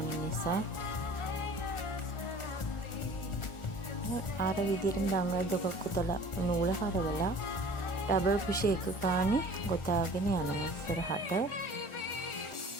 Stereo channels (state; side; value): late; right; 1.4 ms